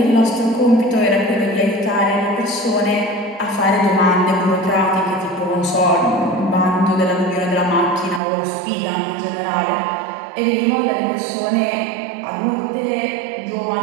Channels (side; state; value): left; drops out; at 8.2 s